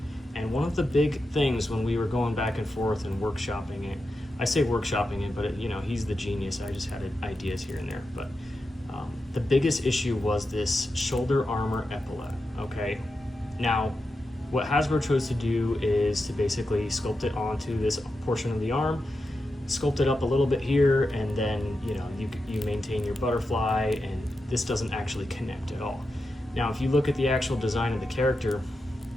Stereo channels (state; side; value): normal; both; correlation 0.89